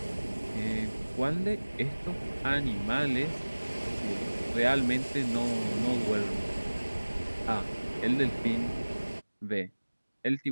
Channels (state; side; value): inverted; both; correlation -1.00